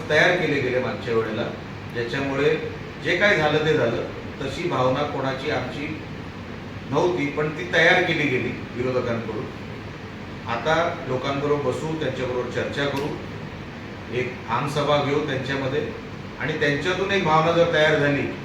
तयार केले गेले मागच्या वेळेला, ज्याच्यामुळे जे काय झालं ते झालं. तशी भावना कोणाची आमची नव्हती, पण ती तयार केली गेली विरोधकांकडून. आता लोकांबरोबर बसू, त्यांच्याबरोबर चर्चा करू, एक आमसभा घेऊ त्यांच्यामध्ये, आणि त्यांच्यातून एक भावना जर तयार झाली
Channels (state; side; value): identical; both; correlation 1.00